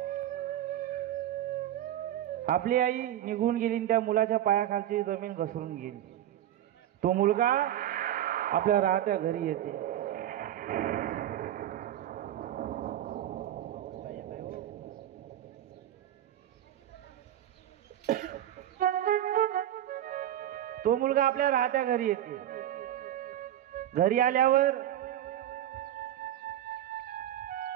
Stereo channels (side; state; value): left; quieter; 11.9 dB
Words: आपली आई निघून गेली आणि त्या मुलाच्या पायाखालची जमीन घसरून गेली. तो मुलगा आपल्या राहत्या घरी येते. तो मुलगा आपल्या राहत्या घरी येते. घरी आल्यावर